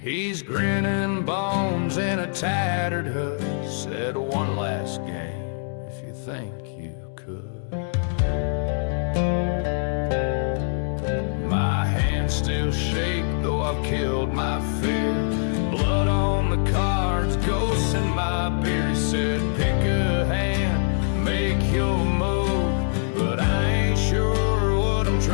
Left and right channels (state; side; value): silent; right; digital silence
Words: grinning bones in a tattered hood, said one last game if you think you could. My hands still shake though I've killed my fear. Blood on the cards, ghosts in my beer. He said pick a hand, make your move, but I ain't sure what I'm